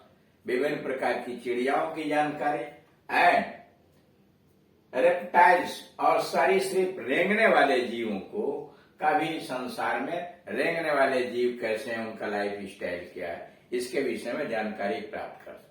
विभिन्न प्रकार की चिड़ियाओं की जानकारी। एंड रेप्टाइल्स, और सरीसृप रेंगने वाले जीवों को का भी, संसार में रेंगने वाले जीव कैसे हैं, उनका लाइफ स्टाइल क्या है, इसके विषय में जानकारी प्राप्त कर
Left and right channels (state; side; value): identical; both; correlation 1.00